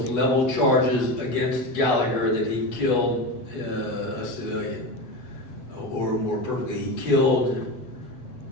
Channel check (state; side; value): late; right; 8.2 ms